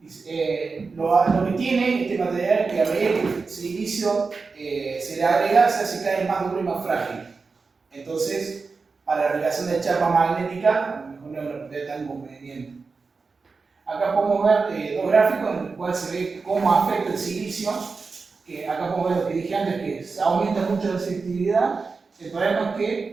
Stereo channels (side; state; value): left; quieter; 4.5 dB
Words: Lo que tiene este material es que a medida que el silicio se le agrega, se hace cada vez más duro y más frágil. Entonces, para la aplicación de chapa magnética, a lo mejor no es una propiedad tan conveniente. Acá podemos ver dos gráficos en los cuales se ve cómo afecta el silicio. Que acá podemos ver lo que dije antes, que se aumenta mucho la selectividad. El problema es